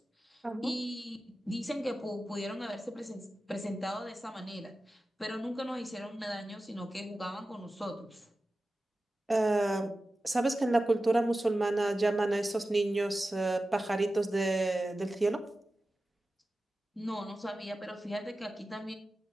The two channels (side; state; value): both; normal; correlation 0.94